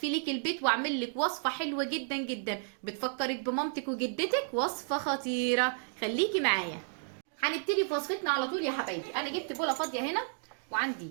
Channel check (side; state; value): left; silent; 56 dB below the other